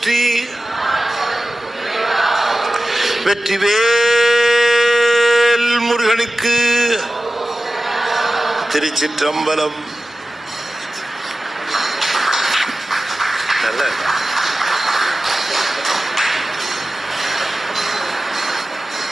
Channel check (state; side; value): normal; both; correlation 0.95